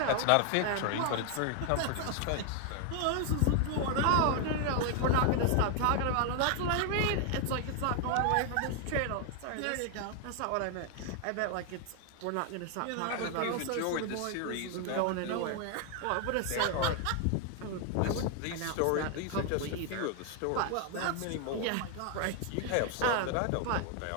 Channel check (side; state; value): both; different; correlation 0.00